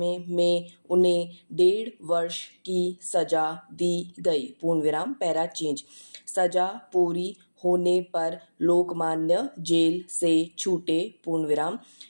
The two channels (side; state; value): both; inverted; correlation -1.00